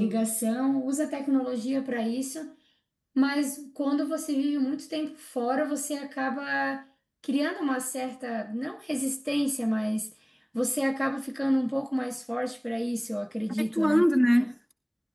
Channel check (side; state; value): both; identical; correlation 1.00